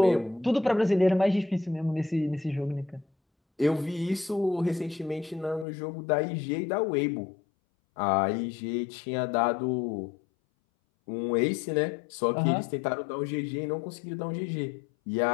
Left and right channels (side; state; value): right; drops out; at 5.7 s